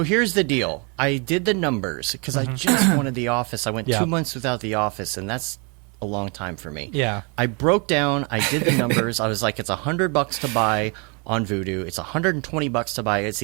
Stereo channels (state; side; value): quieter; left; 33.4 dB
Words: here's the deal. I did the numbers because I just wanted The Office. I went Yeah. 2 months without The Office, and that's a long time for me. Yeah. I broke down. I did the numbers. I was like, it's $100 to buy on Vudu. It's $120 to buy it